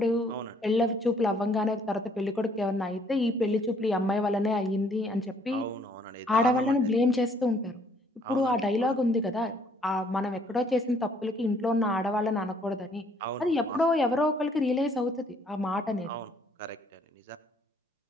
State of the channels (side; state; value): both; normal; correlation 0.63